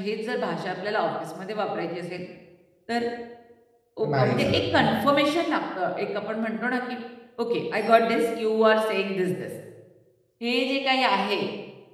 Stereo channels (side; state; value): both; identical; correlation 1.00